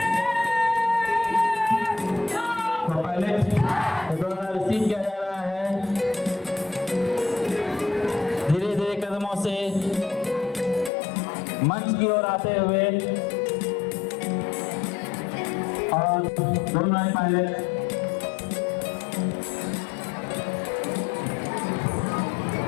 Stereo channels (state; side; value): drops out; right; at 10.9 s